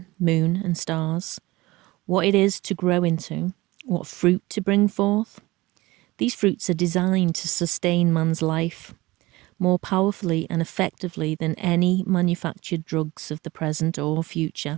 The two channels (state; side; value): quieter; left; 20.2 dB